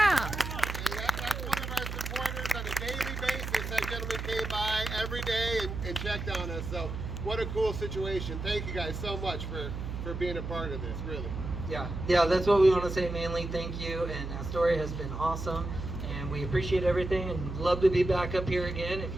That's one of our supporters on a daily basis. That gentleman came by every day and checked on us. So what a cool situation. Thank you guys so much for being a part of this, really. Yeah, that's what we want to say mainly. Thank you, and Astoria has been awesome, and we appreciate everything, and love to be back up here again if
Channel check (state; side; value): noise; right; hum, 6 dB below the sound